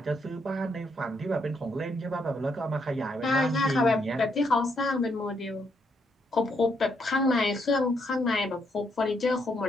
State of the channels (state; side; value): normal; both; correlation 0.76